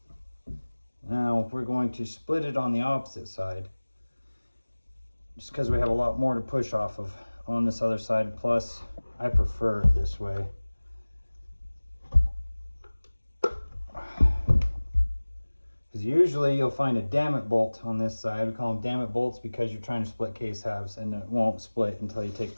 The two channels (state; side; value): inverted; both; correlation -1.00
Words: Now we're going to split it on the opposite side, just because we have a lot more to push off of on this other side. Plus I prefer it this way. Because usually you'll find a damn-it bolt on this side. We call them damn-it bolts because you're trying to split case halves and it won't split until you take